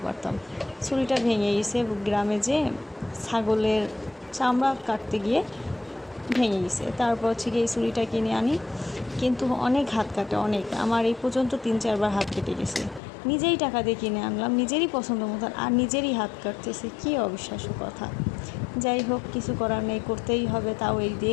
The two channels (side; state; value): right; drops out; at 13.0 s